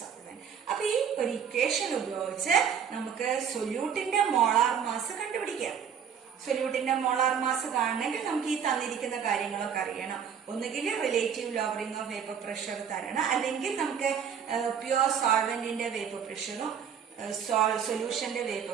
അപ്പൊ ഈ ഒരു equation ഉപയോഗിച്ച് നമുക്ക് സൊല്യൂട്ടിന്റെ molar mass കണ്ടുപിടിക്കാം. സൊല്യൂട്ടിന്റെ molar mass കാണണമെങ്കിൽ നമുക്ക് ഈ തന്നിരിക്കുന്ന കാര്യങ്ങളൊക്കെ അറിയണം. ഒന്നുകിൽ relative lowering of vapour pressure തരണം, അല്ലെങ്കിൽ നമുക്ക് പ്യൂർ സോൾവെന്റിന്റെ വേപ്പർ പ്രഷറും സൊല്യൂഷന്റെ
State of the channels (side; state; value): left; quieter; 7.7 dB